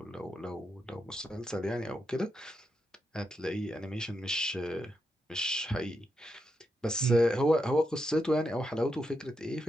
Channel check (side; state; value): both; normal; correlation 0.84